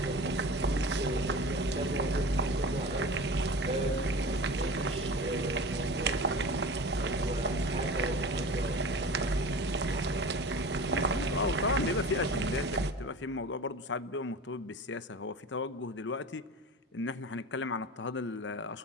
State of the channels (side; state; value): both; normal; correlation 0.35